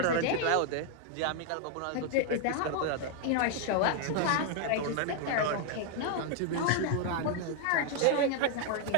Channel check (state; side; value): different; both; correlation 0.00